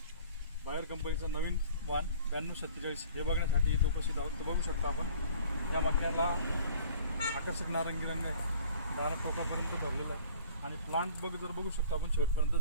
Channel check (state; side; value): inverted; both; correlation -0.49